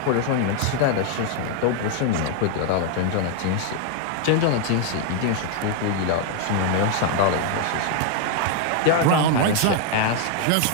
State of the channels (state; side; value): different; both; correlation 0.00